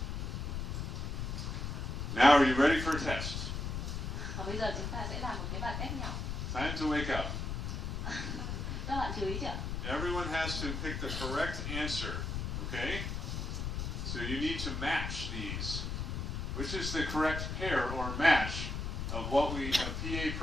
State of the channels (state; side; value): noise; left; rumble, 3 dB below the sound